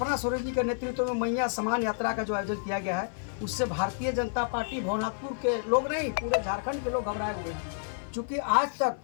सोरेन जी के नेतृत्व में मैया समान यात्रा का जो आयोजन किया गया है, उससे भारतीय जनता पार्टी भवनाथपुर के लोग नहीं, पूरे झारखंड के लोग घबराए हुए हैं। चूँकि आज तक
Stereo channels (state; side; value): silent; right; 58 dB below the other